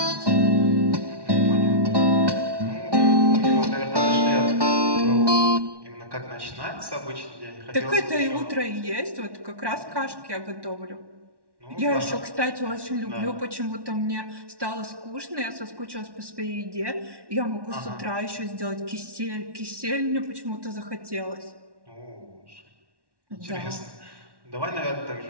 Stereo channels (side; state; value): left; late; 1.1 ms